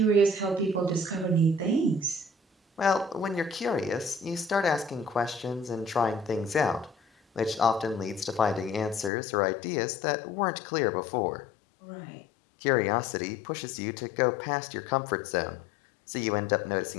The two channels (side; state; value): right; drops out; at 9.1 s